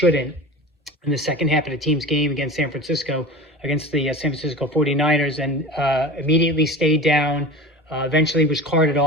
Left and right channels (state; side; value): normal; both; correlation 0.33